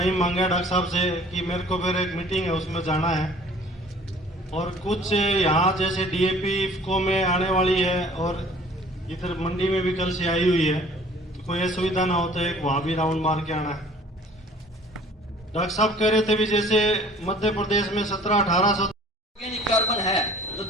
मांगा डॉक्टर साहब से कि मेरे को फिर एक मीटिंग है, उसमें जाना है, और कुछ यहाँ जैसे डीएपी इफको में आने वाली है, और इधर मंडी में भी कल से आई हुई है, तो कोई असुविधा ना हो तो एक वहाँ भी राउंड मार के आना है। डॉक्टर साहब कह रहे थे भी जैसे मध्य प्रदेश में 17-1800 ऑर्गेनिक कार्बन है, तो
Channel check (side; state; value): both; normal; correlation 0.51